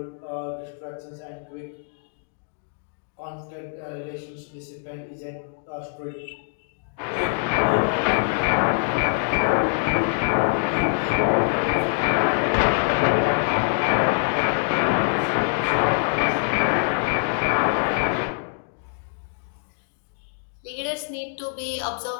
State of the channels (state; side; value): silent; right; digital silence